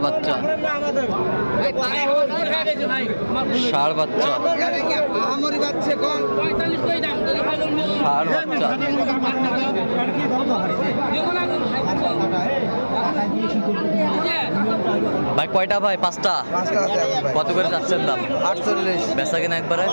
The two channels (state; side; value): inverted; both; correlation -1.00